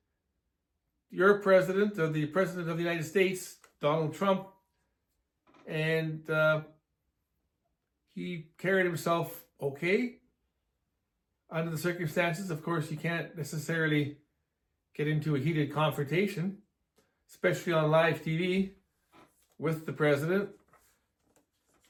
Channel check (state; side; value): identical; both; correlation 1.00